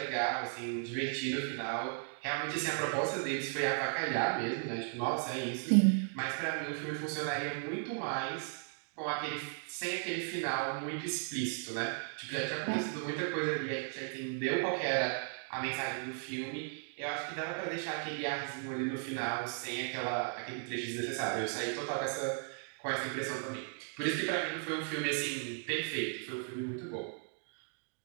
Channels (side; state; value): left; silent; 54 dB below the other